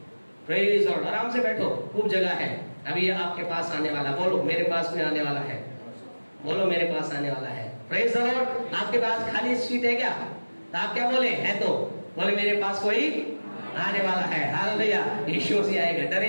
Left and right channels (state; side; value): inverted; both; correlation -1.00